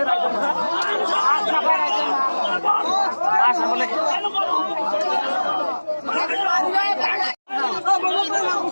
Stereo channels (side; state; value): both; inverted; correlation -1.00